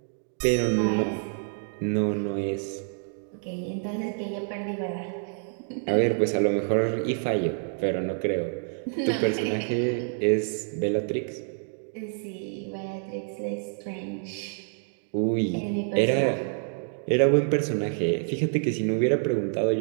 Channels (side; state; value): left; silent; 60 dB below the other